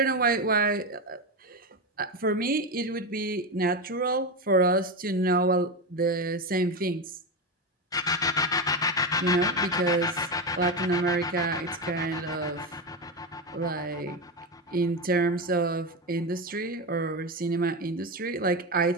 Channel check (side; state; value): both; normal; correlation 0.15